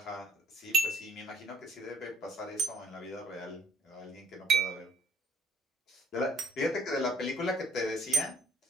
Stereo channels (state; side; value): normal; both; correlation 0.60